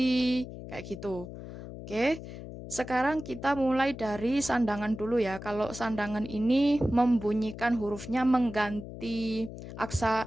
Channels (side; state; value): left; noise; hum, 11 dB below the sound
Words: kayak gitu. Oke, sekarang kita mulai dari sandangan dulu ya. Kalau sandangan ini membunyikan hurufnya mengganti